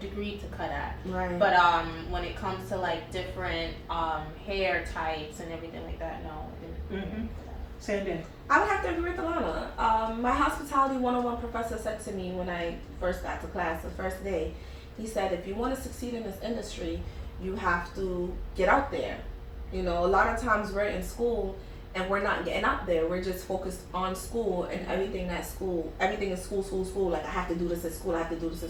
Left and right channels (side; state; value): both; identical; correlation 1.00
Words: to cut at. Right. But when it comes to like different hair types and everything like that, no. Sandy. I would have to agree with Alana. My hospitality 101 professor said to me when I first got to class the first day, he said, if you want to succeed in this industry, you have to get out there. You know, a lot of times we're in school and we're not getting out there. We're just focused on school and everything is school. Like, I have to do this at school, I have to do this at